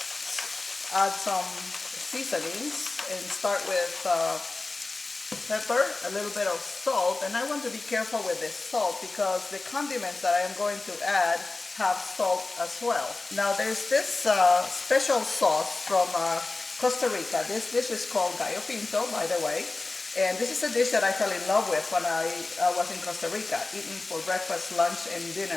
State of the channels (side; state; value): right; quieter; 3.4 dB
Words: add some seasonings and start with pepper, a little bit of salt, and I want to be careful with the salt because the condiments that I am going to add have salt as well. Now there's this special sauce from Costa Rica. This dish is called Gallo Pinto, by the way, and this is a dish that I fell in love with when I was in Costa Rica, eating for breakfast, lunch, and